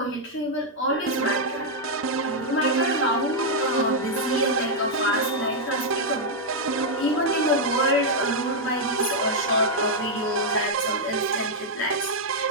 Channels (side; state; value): both; normal; correlation -0.03